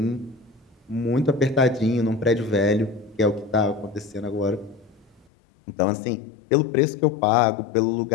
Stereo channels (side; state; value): right; drops out; at 5.2 s